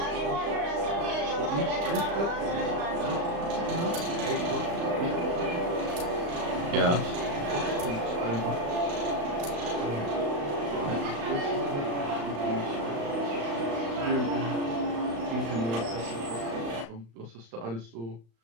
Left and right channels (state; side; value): late; left; 35 ms